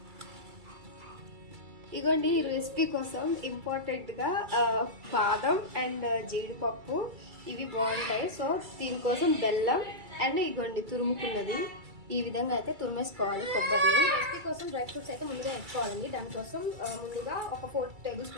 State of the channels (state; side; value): late; left; 2.3 ms